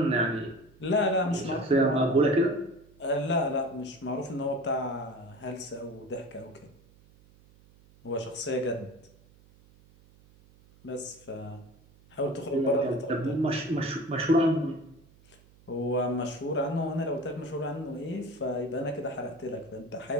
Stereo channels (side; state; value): right; noise; hum, 27 dB below the sound